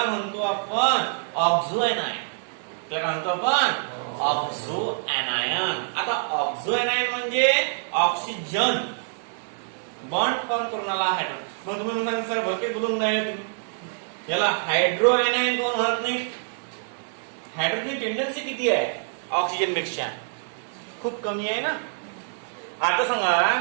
म्हणतो आपण ऑक्झो आयनायन. त्याला म्हणतो आपण ऑक्झो आयनायन. आता ऑक्झो आयनायन म्हणजे ऑक्सिजन बॉन्ड फॉर्म करून आला हायड्रोजन. मग तुम्ही म्हणता सर भरके बोलून राहिले तुम्ही, याला हायड्रो आयनायन कोण म्हणत नाही? हायड्रोजन टेंडन्सी किती आहे ऑक्सिजन पेक्षा? खूप कमी आहे ना. आता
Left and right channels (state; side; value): silent; left; digital silence